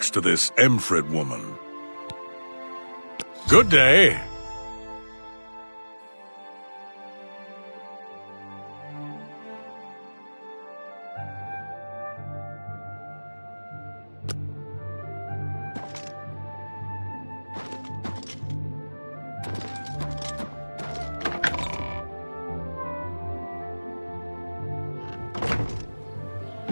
to this Emfrid woman. Good day.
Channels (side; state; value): both; inverted; correlation -1.00